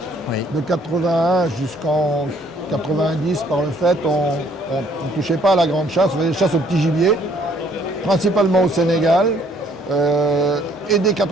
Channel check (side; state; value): both; normal; correlation 0.63